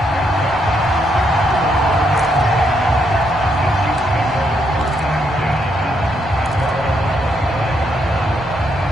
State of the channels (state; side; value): normal; both; correlation 0.76